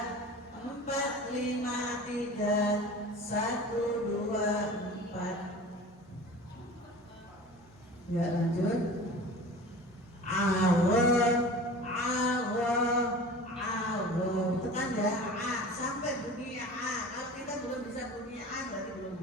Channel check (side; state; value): both; normal; correlation 0.38